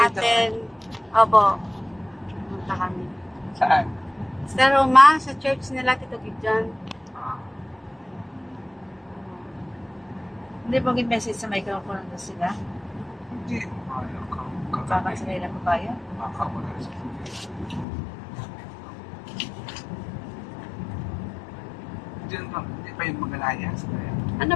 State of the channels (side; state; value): right; drops out; at 17.9 s